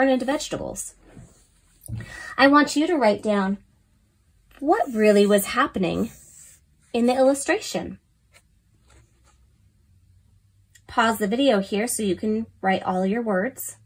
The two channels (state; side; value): identical; both; correlation 1.00